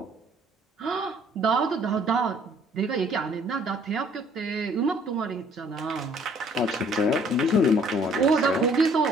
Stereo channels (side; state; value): both; normal; correlation 0.59